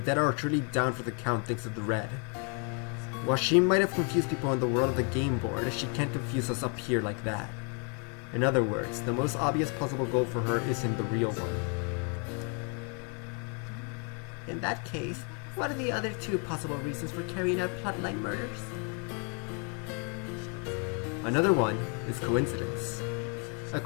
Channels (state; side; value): quieter; right; 38.0 dB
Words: dead are truly down for the count thanks to the red. While she might have confused people in the world of the game board, she can't confuse us up here like that. In other words, the most obvious possible goal for her isn't the real one. In that case, what are the other 2 possible reasons for carrying out plotline murders? Another one is coincidence. A